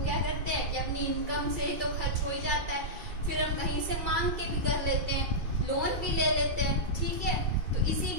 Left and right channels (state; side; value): late; left; 2.3 ms